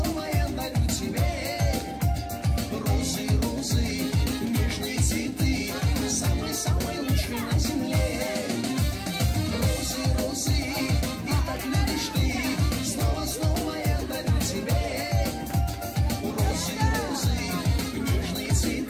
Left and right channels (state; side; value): identical; both; correlation 1.00